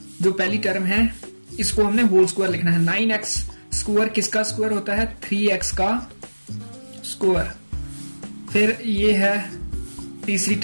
जो पहली टर्म है इसको हमने होल स्क्वायर लिखना है। 9x स्क्वायर किसका स्क्वायर होता है? 3x का स्क्वायर। फिर ये है तीसरी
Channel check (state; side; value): inverted; both; correlation -1.00